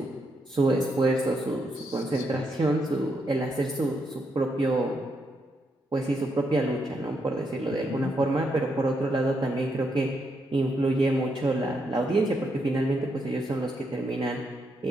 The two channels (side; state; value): both; normal; correlation 0.79